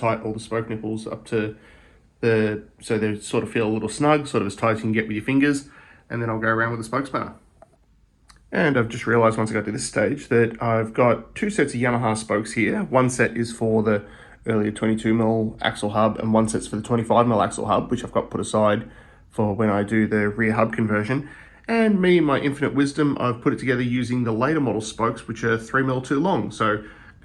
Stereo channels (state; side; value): identical; both; correlation 1.00